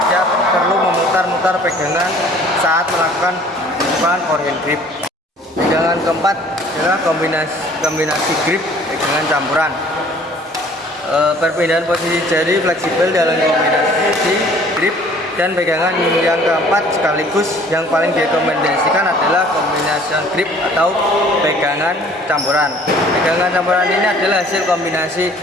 perlu memutar-mutar pegangan saat melakukan pukulan forehand grip. Pegangan keempat adalah kombinasi grip, pegangan campuran. Perpindahan posisi jari fleksibel dalam kombinasi grip dan pegangan yang keempat sekaligus yang paling direkomendasikan adalah kombinasi grip atau pegangan campuran. Pegangan campuran ini adalah hasil kombinasi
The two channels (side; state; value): both; normal; correlation 0.53